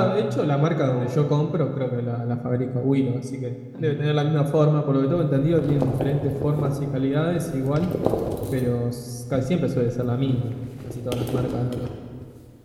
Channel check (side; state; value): both; identical; correlation 1.00